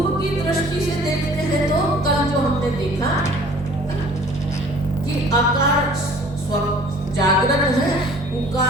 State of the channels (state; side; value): normal; both; correlation 0.51